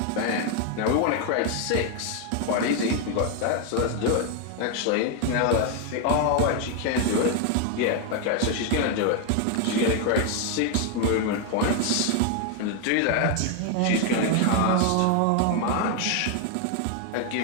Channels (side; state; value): both; different; correlation 0.00